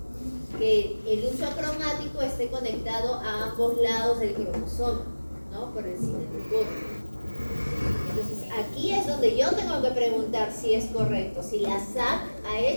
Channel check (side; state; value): both; inverted; correlation -1.00